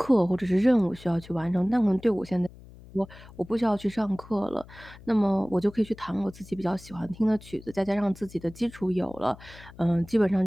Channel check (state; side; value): noise; left; hum, 20 dB below the sound